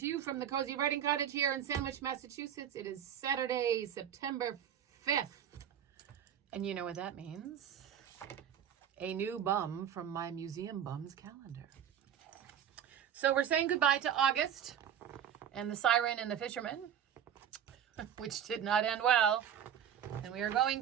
you from the Cozy Writing Cottage here in Sandwich, Massachusetts. It is Saturday, September 5th. And you know what that means. A new bum from my Museum Bums calendar. So we're saying goodbye to August and the Siren and the Fisherman, which did not end well. And we are going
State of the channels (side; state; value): left; quieter; 9.2 dB